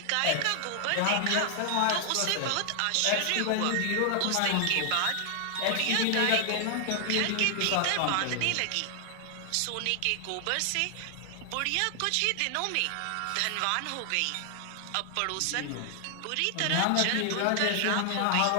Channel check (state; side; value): different; both; correlation 0.00